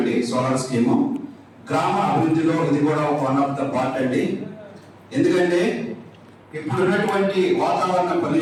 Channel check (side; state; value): both; identical; correlation 1.00